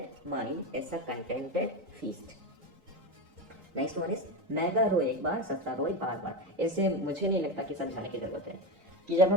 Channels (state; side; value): late; left; 3.8 ms